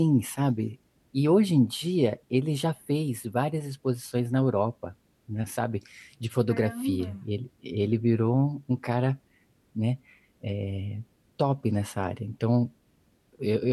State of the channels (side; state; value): both; identical; correlation 1.00